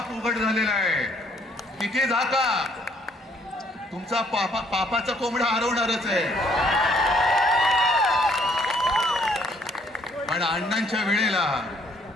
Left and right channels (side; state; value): both; normal; correlation 0.65